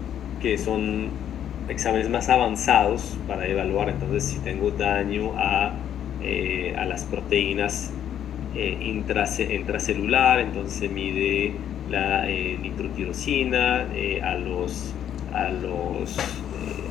que son exámenes más avanzados para evaluar entonces si tengo daño a las proteínas intracelular. Entonces se mide la nitrotirosina, a los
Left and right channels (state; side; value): quieter; right; 10.0 dB